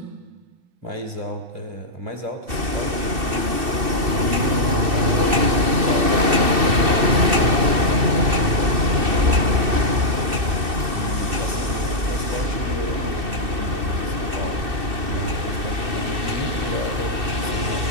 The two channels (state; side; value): late; left; 2.6 ms